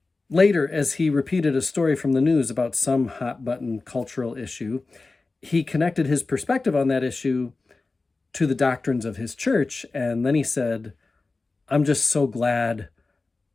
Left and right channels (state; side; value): quieter; right; 3.7 dB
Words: Later, as he repeated a story from the news about some hot button cultural issue, he connected his perspective on that issue to the doctrines of his church. And then he said, I'm just so glad